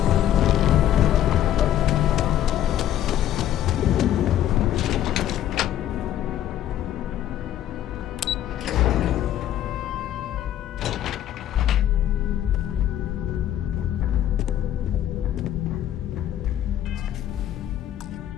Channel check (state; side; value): quieter; right; 11.7 dB